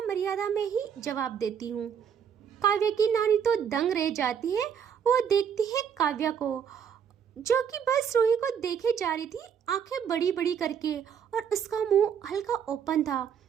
मर्यादा में ही जवाब देती हूँ। काव्या की नानी तो दंग रह जाती है। वो देखती है काव्या को जो कि बस रूही को देखे जा रही थी, आंखें बड़ी बड़ी करके, और उसका मुंह हल्का ओपन था।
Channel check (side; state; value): left; quieter; 7.8 dB